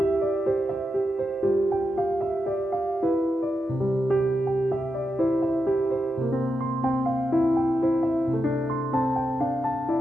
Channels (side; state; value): both; normal; correlation 0.87